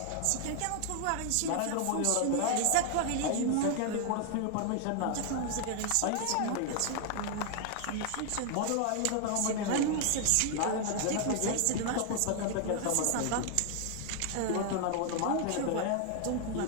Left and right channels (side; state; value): both; different; correlation 0.00